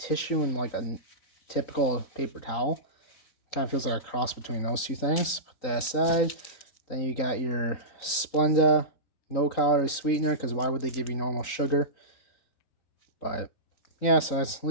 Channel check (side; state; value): right; late; 3.9 ms